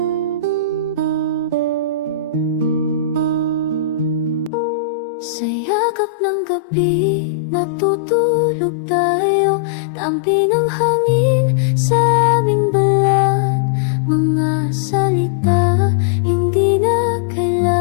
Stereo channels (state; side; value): drops out; right; at 4.5 s